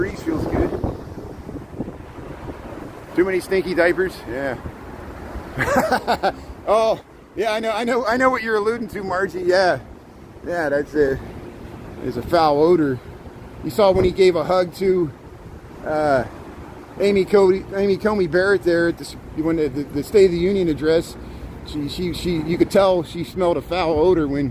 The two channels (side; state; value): both; identical; correlation 1.00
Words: feels good. Too many stinky diapers? Yeah. Oh, yeah, I know what you're alluding to, Margie. Yeah. Yeah, there's a foul odor. You saw when he gave a hug to Amy Coney Barrett there at when the State of the Union address. You could tell she smelled a foul odor